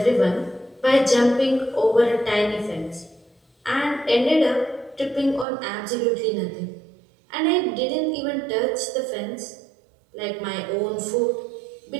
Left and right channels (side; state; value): left; drops out; at 5.5 s